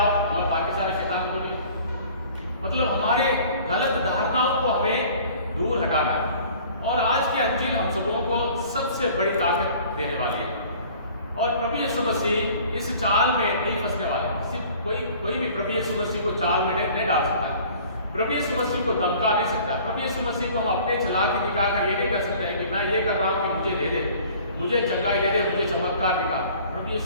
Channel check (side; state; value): both; inverted; correlation -0.49